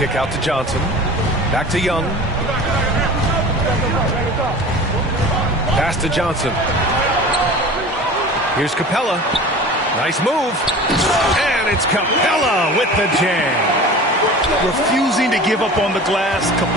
out to Johnson. Back to Young. Pass to Johnson. Here's Capella. Nice move. And it's Capella with the jam. Refusing to give up on the glass,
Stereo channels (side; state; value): both; normal; correlation 0.38